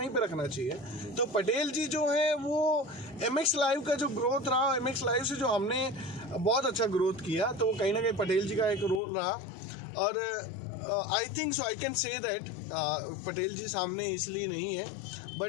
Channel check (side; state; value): right; drops out; at 9.0 s